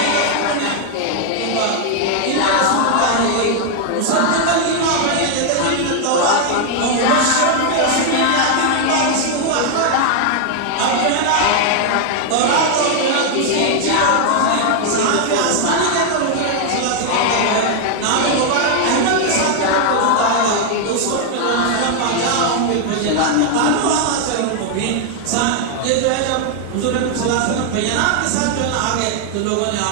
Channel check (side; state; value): both; different; correlation 0.00